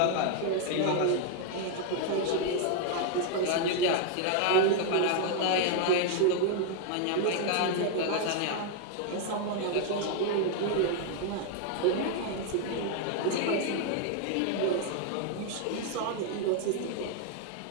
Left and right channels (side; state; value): both; different; correlation 0.00